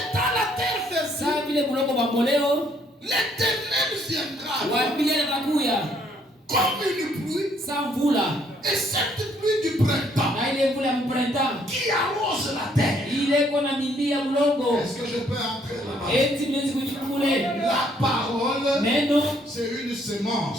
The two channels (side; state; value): both; normal; correlation 0.67